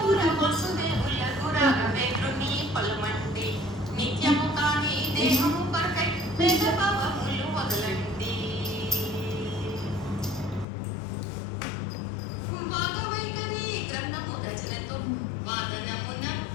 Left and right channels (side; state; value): right; drops out; at 10.7 s